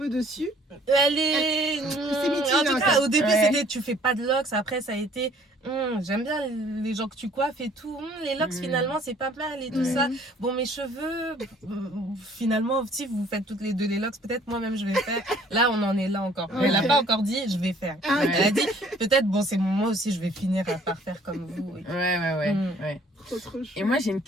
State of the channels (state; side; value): normal; both; correlation 0.57